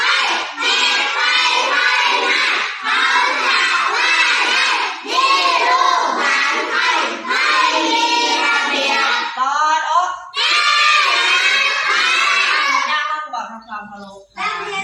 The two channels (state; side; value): identical; both; correlation 1.00